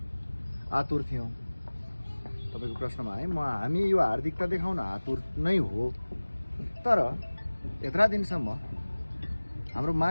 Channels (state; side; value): inverted; both; correlation -1.00